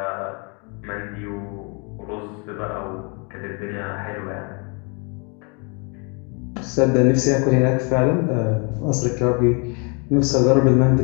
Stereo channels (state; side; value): quieter; right; 34.3 dB